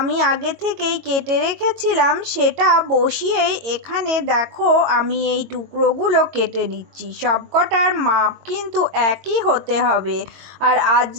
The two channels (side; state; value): left; late; 22 ms